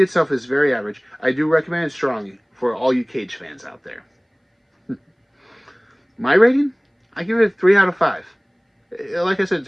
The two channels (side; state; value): both; identical; correlation 1.00